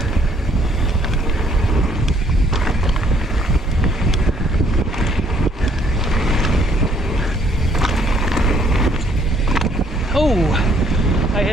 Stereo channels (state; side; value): normal; both; correlation 0.64